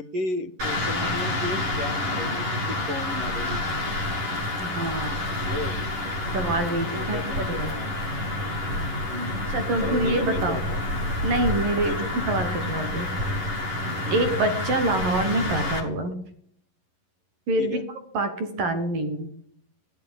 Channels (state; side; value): late; left; 11 ms